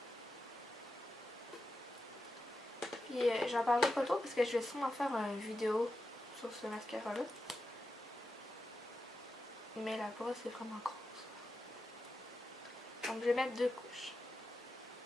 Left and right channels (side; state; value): both; normal; correlation 0.89